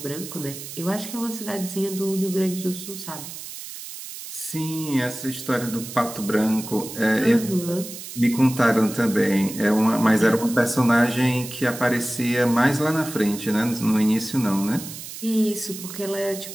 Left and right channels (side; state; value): right; noise; hiss, 11 dB below the sound